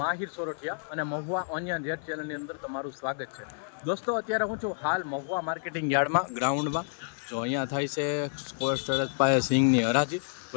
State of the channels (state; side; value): silent; right; 57 dB below the other